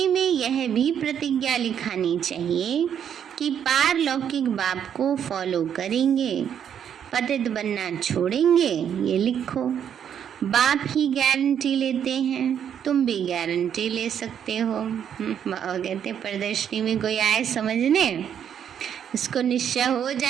में यह भी प्रतिज्ञा लिखानी चाहिए कि पारलौकिक बाप को फॉलो करेंगे, पतित बनना छोड़ेंगे। ये लिखो। बाप ही गारंटी लेते हैं, तुम भी गारंटी ले सकते हो। बाबा कहते प्रदर्शनी में कोई आए समझने, इसको निश्चय हो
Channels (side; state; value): left; quieter; 8.8 dB